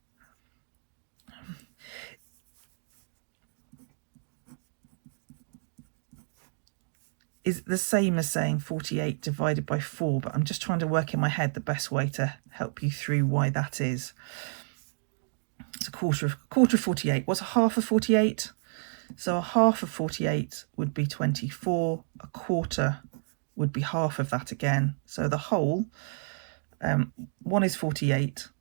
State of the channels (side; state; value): left; silent; digital silence